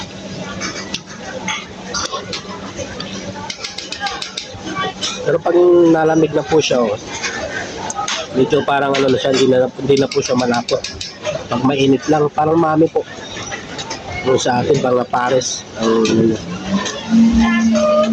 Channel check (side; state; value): both; identical; correlation 1.00